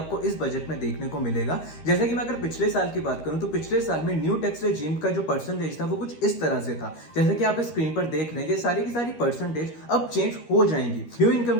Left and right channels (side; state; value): right; late; 13 ms